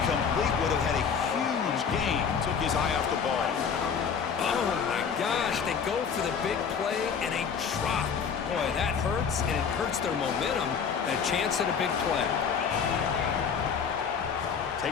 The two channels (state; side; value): quieter; right; 6.6 dB